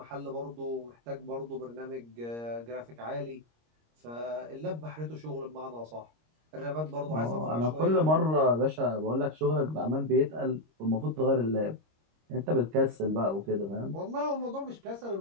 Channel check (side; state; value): left; late; 26 ms